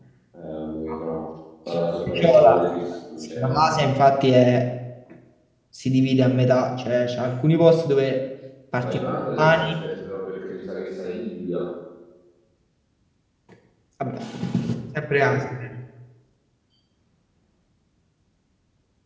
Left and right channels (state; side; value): identical; both; correlation 1.00